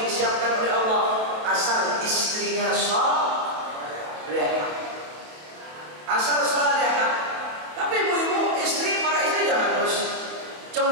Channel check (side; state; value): left; late; 28 ms